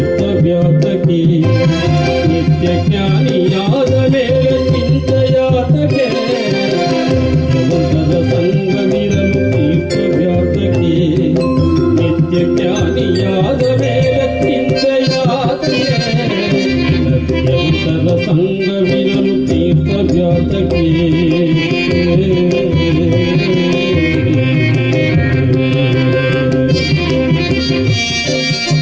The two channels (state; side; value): identical; both; correlation 1.00